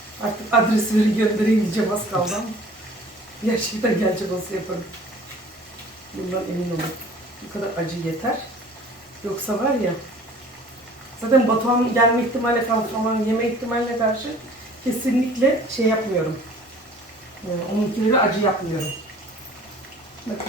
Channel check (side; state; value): both; normal; correlation 0.49